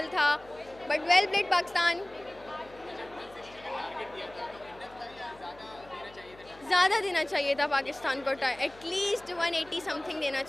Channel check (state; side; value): noise; left; hum, 23 dB below the sound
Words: था, बट वेल प्लेड पाकिस्तान। ज़्यादा देना चाहिए था पाकिस्तान को, एटलीस्ट 180 समथिंग देना